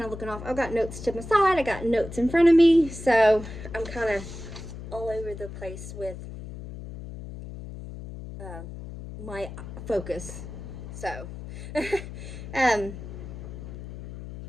of looking off, I've got notes to my side, I got notes in front of me, so I'm kind of all over the place with my focus. So, but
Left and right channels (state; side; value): noise; left; hum, 11 dB below the sound